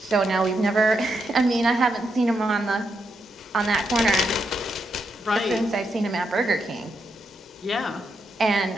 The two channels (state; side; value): normal; both; correlation 0.81